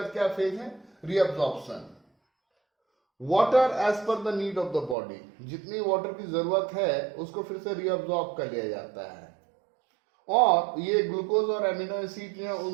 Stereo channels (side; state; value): left; drops out; at 5.0 s